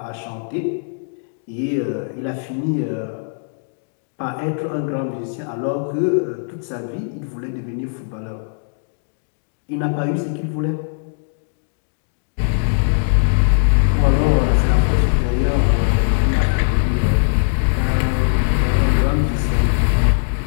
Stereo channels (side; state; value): right; silent; digital silence